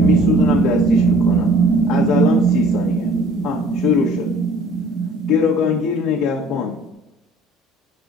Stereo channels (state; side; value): normal; both; correlation 0.52